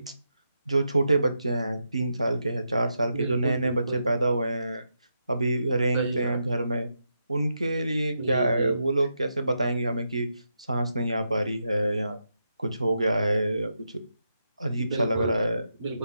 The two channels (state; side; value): inverted; both; correlation -0.84